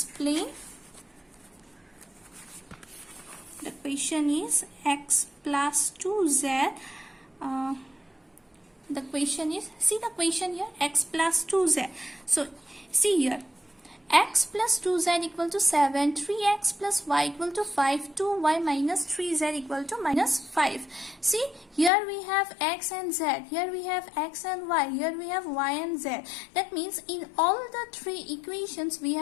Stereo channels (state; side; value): drops out; right; at 21.9 s